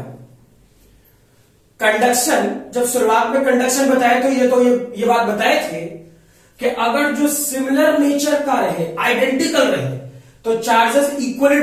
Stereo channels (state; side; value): identical; both; correlation 1.00